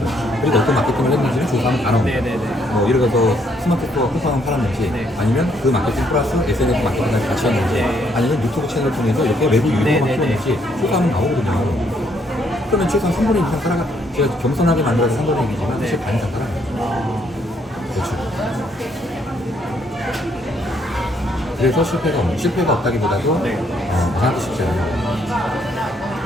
그리고 어떤 마케팅을 했는지는 조사하면 다 나옵니다. 네네네. 뭐 예를 들어서 스마트 스토어 쿠팡을 팔았는지 네. 아니면 그 마케팅 플러스 SNS 마케팅까지 같이 했는지 네. 아니면 유튜브 채널을 통해서 이렇게 외부 유료만 네네네. 키웠는지 조사하면 나오거든요. 그러면 최소한 3분의 2 이상 따라가 제가 겸손하게 만들어서 3분의 1이지만 사실 네. 반 이상 따라가요. 아, 그렇죠. 그래서 실패가 없다기보다도 네. 만하기 쉽지 않아요.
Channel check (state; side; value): normal; both; correlation 0.70